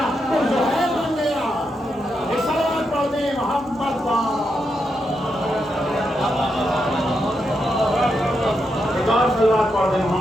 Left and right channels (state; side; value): normal; both; correlation 0.83